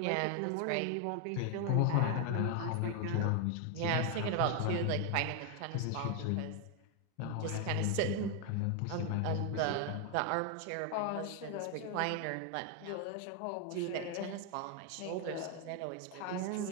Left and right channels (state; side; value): different; both; correlation 0.01